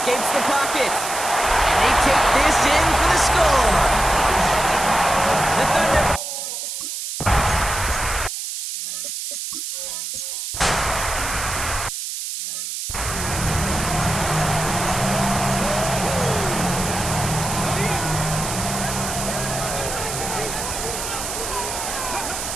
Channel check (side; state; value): right; noise; hiss, 5 dB below the sound